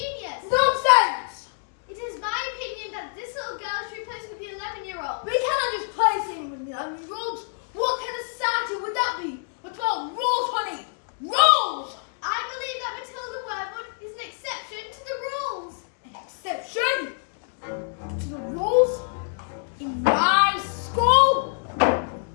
Nonsense! It is my opinion that this little girl should be placed with the 11-year-old. We cannot just place him with the 11-year-olds. What kind of society would that be? What's about rules, honey? Rules! I believe that Matilda Wormwood is an exception to the rules. An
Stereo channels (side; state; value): right; silent; digital silence